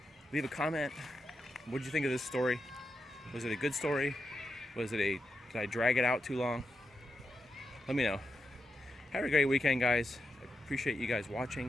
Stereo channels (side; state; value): both; normal; correlation 0.86